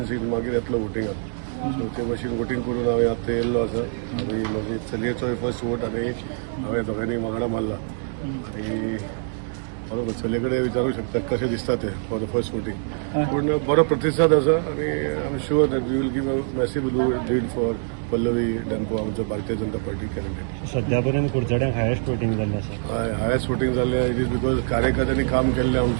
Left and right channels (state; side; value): silent; left; digital silence